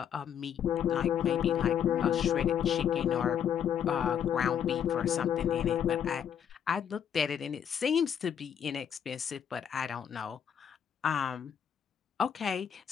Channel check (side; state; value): right; quieter; 8.6 dB